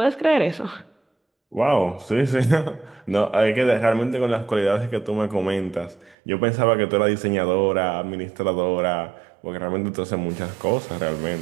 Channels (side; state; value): left; drops out; at 6.2 s